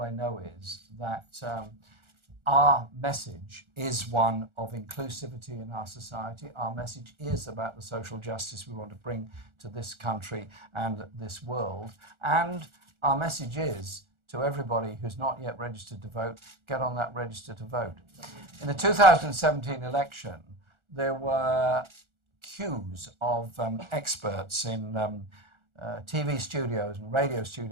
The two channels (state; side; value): late; left; 1.4 ms